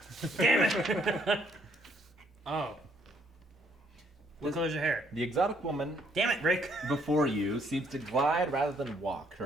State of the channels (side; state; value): both; normal; correlation 0.68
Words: Damn it. Oh. What color's your hair? The exotic woman Damn it, Rick. before you seems to glide rather than walk. Her